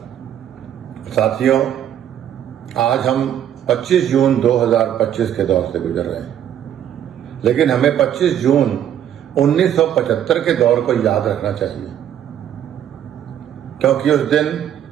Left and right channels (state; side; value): quieter; left; 10.3 dB